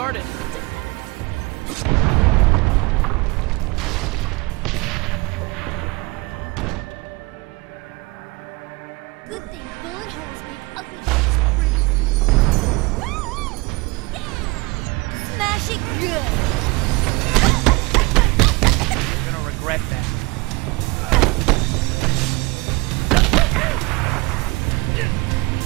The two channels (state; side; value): quieter; left; 25.0 dB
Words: Good thing bullet holes make ugly things pretty. Yeah! Smash it good! You're gonna regret that.